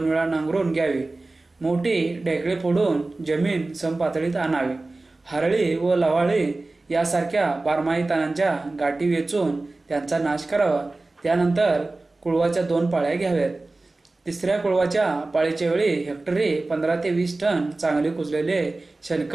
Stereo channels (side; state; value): left; quieter; 3.1 dB